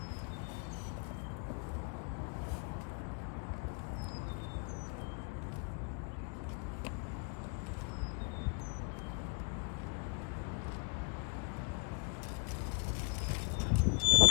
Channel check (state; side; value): quieter; right; 33.4 dB